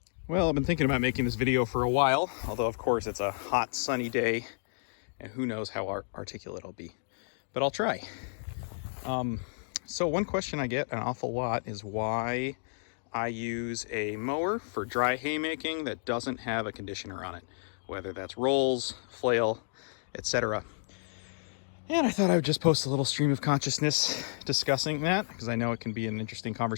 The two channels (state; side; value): silent; right; digital silence